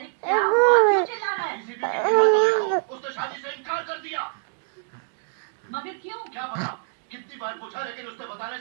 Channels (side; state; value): left; silent; digital silence